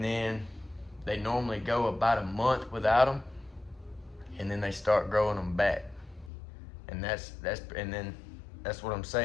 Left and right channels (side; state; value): right; drops out; at 6.3 s